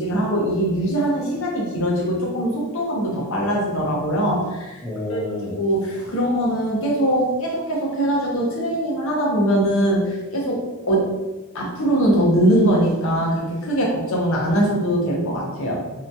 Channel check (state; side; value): normal; both; correlation 0.31